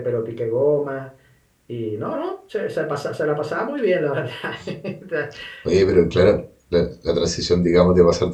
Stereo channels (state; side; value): identical; both; correlation 1.00